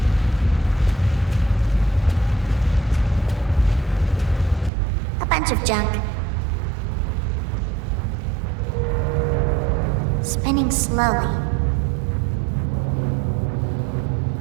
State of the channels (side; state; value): left; drops out; at 4.7 s